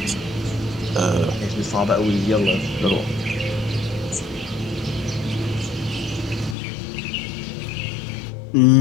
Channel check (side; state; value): right; drops out; at 6.6 s